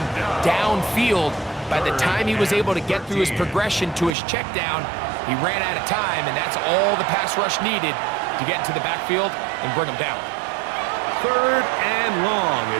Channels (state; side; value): drops out; left; at 4.1 s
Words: downfield. By the time he was able to get through his progression to his check down, he ran out of time, and that's all the pass rush needed to get into the backfield and bring him down. 3rd and long,